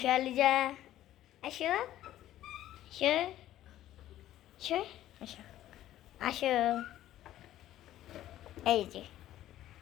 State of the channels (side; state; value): right; quieter; 13.3 dB